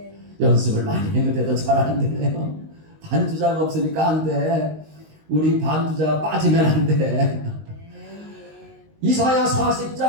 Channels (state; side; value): late; left; 19 ms